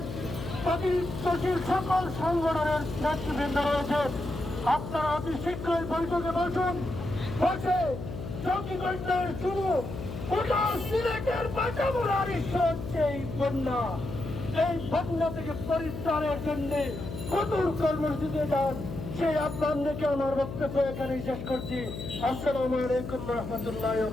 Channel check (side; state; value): left; noise; hum, 8 dB below the sound